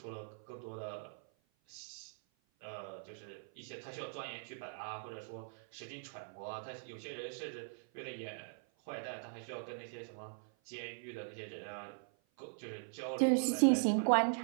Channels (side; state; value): left; silent; 51 dB below the other